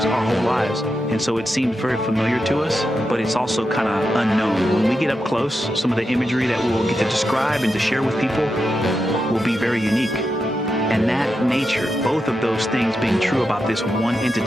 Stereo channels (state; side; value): normal; both; correlation 0.87